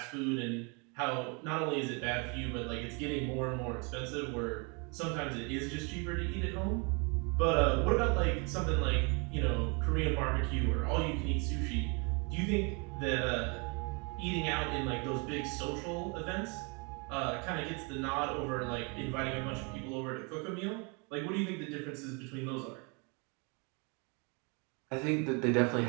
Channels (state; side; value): quieter; left; 32.7 dB